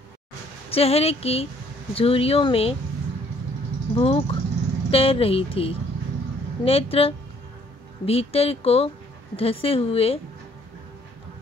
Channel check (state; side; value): normal; both; correlation 0.63